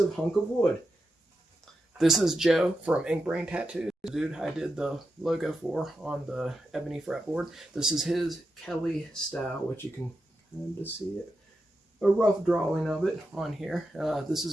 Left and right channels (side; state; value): both; normal; correlation 0.88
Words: hunk of wood. This is Joe from Inkbrain Tattoos, the dude I did the logo for on the ebony fretboard. This is his Kelly style, which you can kind of see it. A rough drawing of it on here. This